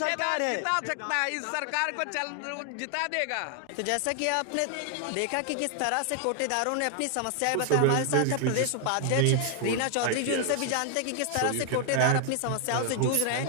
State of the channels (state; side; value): different; both; correlation 0.00